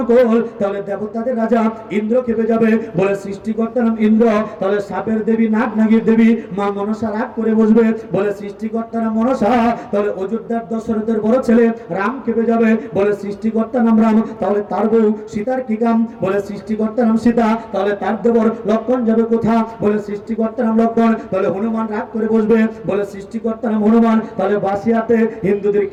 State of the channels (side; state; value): both; identical; correlation 1.00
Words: তাহলে দেবতাদের রাজা ইন্দ্র খেপে যাবে। বলে সৃষ্টিকর্তা নাম ইন্দ্র, তাহলে সাপের দেবী, নাগ নাগির দেবী মা মনসা রাগ করে বসবে। বলে সৃষ্টিকর্তার নাম মনসা, তাহলে অযোধ্যার দশরথের বড় ছেলে রাম কেঁপে যাবে, বলে সৃষ্টিকর্তার নাম রাম, তাহলে তার বউ সীতার কি কাম, বলে সৃষ্টিকর্তার নাম সীতা, তাহলে তার দেবর লক্ষণ যাবে কোথা, বলে সৃষ্টিকর্তার নাম লক্ষণ, তাহলে হনুমান রাগ করে বসবে, বলে সৃষ্টিকর্তার নাম হনুমান, তাহলে বাসিয়াতে হিন্দুদের